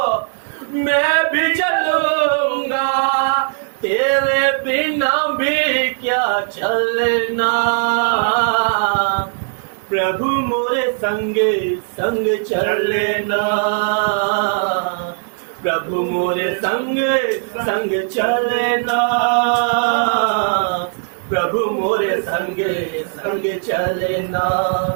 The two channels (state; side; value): silent; left; 60 dB below the other